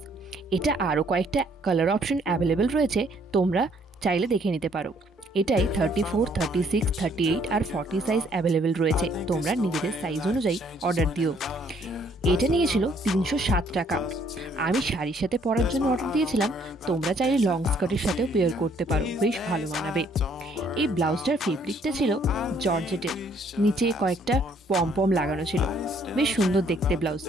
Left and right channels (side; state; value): both; normal; correlation 0.64